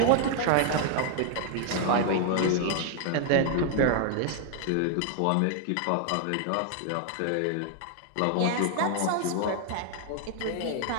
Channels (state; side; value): different; both; correlation 0.00